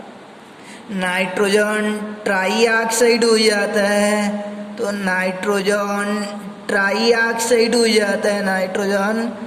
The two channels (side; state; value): both; identical; correlation 1.00